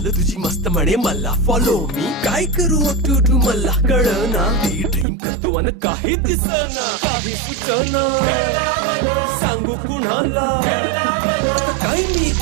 तुझी मस्त म्हणे मला फॉलो मी काय करू टू मला कळना ती ड्रीम करतो आणि काही दिसना काही सुचना सांगू कुणाला आता काय मी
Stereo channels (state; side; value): drops out; left; at 5.1 s